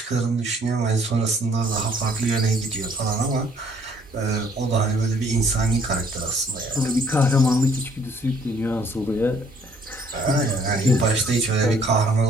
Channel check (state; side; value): normal; both; correlation 0.61